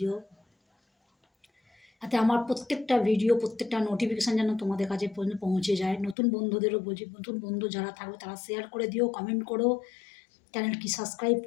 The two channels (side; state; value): right; drops out; at 6.2 s